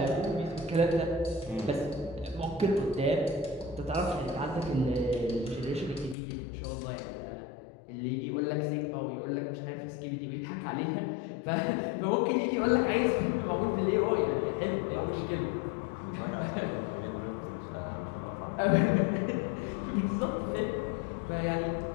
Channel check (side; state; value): right; drops out; at 6.2 s